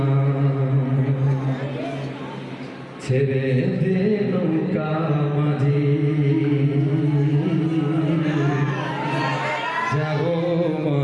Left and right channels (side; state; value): both; identical; correlation 1.00